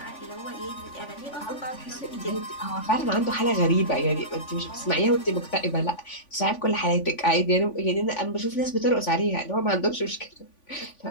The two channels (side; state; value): right; late; 3.5 ms